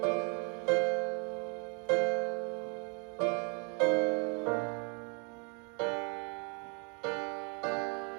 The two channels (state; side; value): quieter; left; 36.2 dB